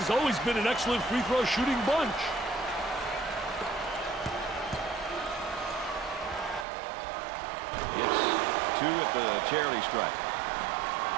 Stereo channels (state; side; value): drops out; left; at 6.7 s